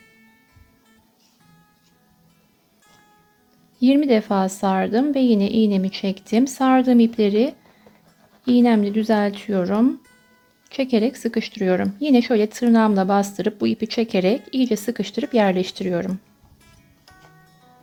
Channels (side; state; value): both; identical; correlation 1.00